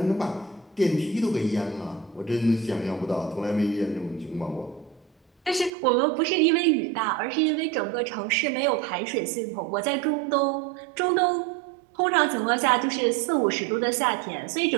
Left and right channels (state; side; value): drops out; left; at 5.7 s